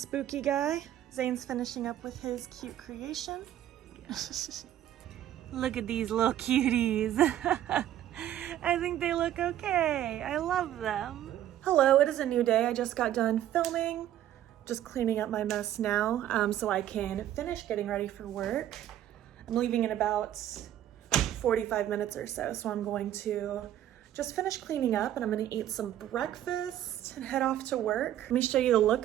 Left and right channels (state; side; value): quieter; left; 12.0 dB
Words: guy. Zane's finishing up with his cute creation. Look at these little cuties. I think they look okay. I love them. Hello, it is a new day. I just got done filming. Just cleaning up my mess now so I can finish getting ready for work. I'm leaving in about 45 minutes or so, so I'm going to just finish cleaning up and I'm gonna eat some breakfast and head off to work. Let me show you the